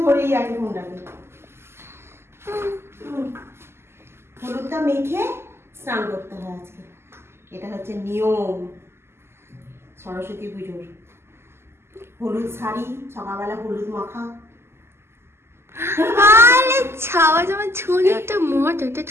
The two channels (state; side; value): late; left; 0.12 ms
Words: ধরেই আছে ফোনটাকে। হলুদটা মেখে স্নান করতে হয় আজকে, এটা হচ্ছে নিয়ম সরস্বতী পুজোর। হলুদ শাড়ি, সকালবেলা হলুদ মাখা। আরে ছাওয়া জামা ছোনো একটা মজা, একটা